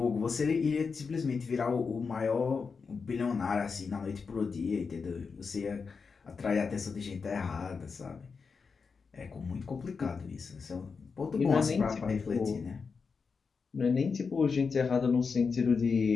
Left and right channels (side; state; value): right; quieter; 5.2 dB